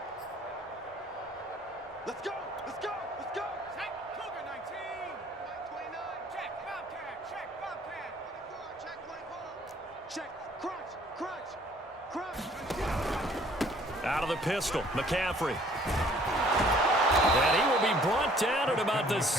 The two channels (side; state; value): both; normal; correlation 0.58